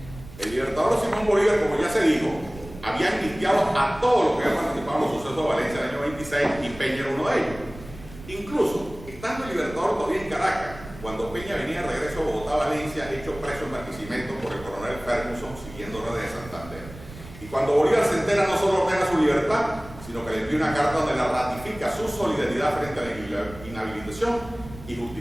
El Libertador Simón Bolívar, como ya se dijo, había iniciado a todos los que habían participado en los sucesos de Valencia en el año 26 y Peña era uno de ellos. Incluso, estando el Libertador todavía en Caracas, cuando Peña venía de regreso a Bogotá, Valencia, hecho preso en Barquisimeto por el coronel Ferguson, siguiendo órdenes de Santander. Y cuando Bolívar se entera, no solo ordena su libertad, sino que le envía una carta donde la ratifica su solidaridad frente a la inhabilitación y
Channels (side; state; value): right; noise; rumble, 16 dB below the sound